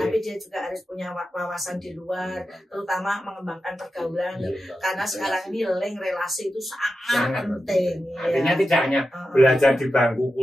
dia juga harus punya wawasan di luar, terutama mengembangkan pergaulan. Karena sekarang ini link relasi itu sangat penting. Artinya tidak hanya belajar di bangku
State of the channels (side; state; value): both; normal; correlation 0.91